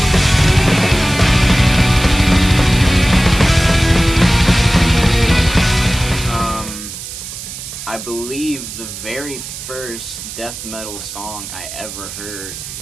I believe the very first death metal song I ever heard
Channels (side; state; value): right; noise; hiss, 10 dB below the sound